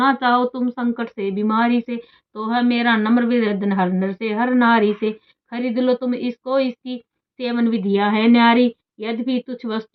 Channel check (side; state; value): both; identical; correlation 1.00